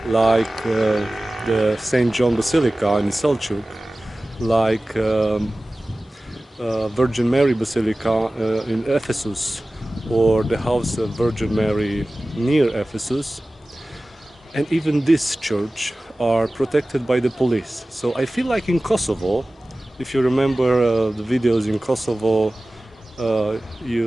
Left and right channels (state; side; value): normal; both; correlation 0.97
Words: like the St. John Basilica in Selçuk, like Virgin Mary Basilica in Ephesus, or the House of Virgin Mary near Ephesus, and even this church are protected by the police. So I feel like in Kosovo, if you remember the videos in Kosovo,